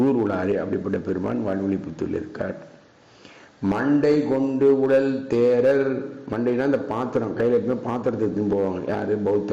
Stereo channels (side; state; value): both; identical; correlation 1.00